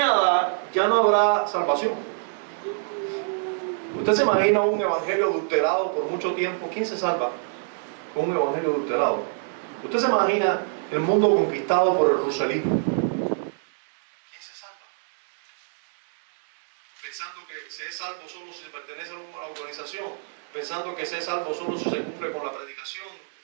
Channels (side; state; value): left; silent; digital silence